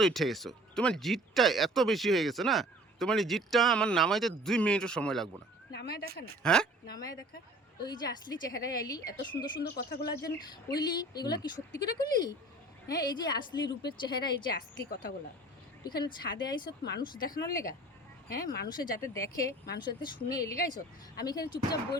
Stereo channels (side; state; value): both; normal; correlation 0.47